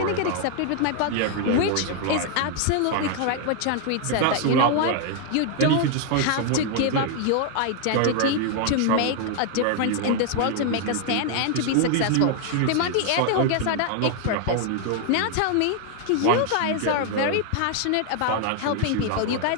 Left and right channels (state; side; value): different; both; correlation 0.00